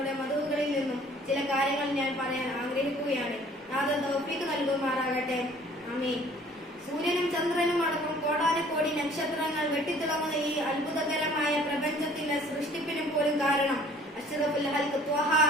മദഹുകളിൽ നിന്നും ചില കാര്യങ്ങൾ ഞാൻ പറയാൻ ആഗ്രഹിക്കുകയാണ്. നാഥൻ തൗഫീഖ് നൽകുമാറാകട്ടെ. ആമീൻ. സൂര്യനും ചന്ദ്രനും അടക്കം കോടാനുകോടി നക്ഷത്രങ്ങൾ വെട്ടിത്തിളങ്ങുന്ന ഈ അത്ഭുതകരമായ പ്രപഞ്ചത്തിന്റെ സൃഷ്ടിപ്പിനും പോലും കാരണം അഷ്റഫുൽ ഖൽഖ് ത്വഹ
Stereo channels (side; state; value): both; normal; correlation 0.54